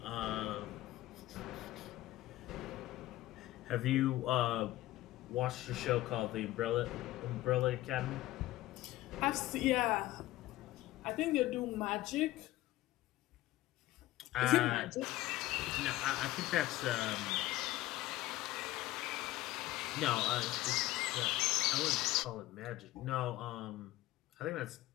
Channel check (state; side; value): quieter; right; 16.6 dB